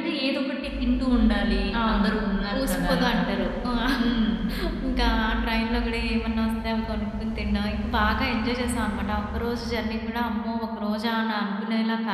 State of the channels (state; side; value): identical; both; correlation 1.00